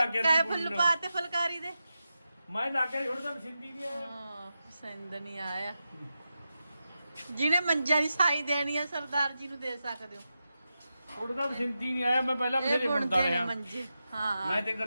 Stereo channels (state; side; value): inverted; both; correlation -0.90